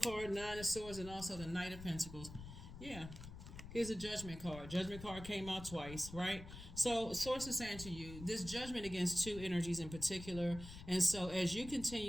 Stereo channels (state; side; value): noise; left; rumble, 12 dB below the sound